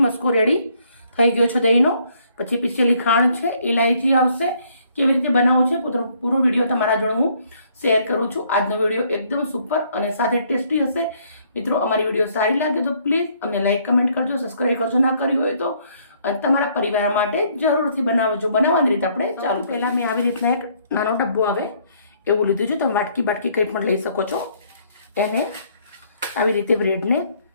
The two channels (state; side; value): inverted; both; correlation -0.66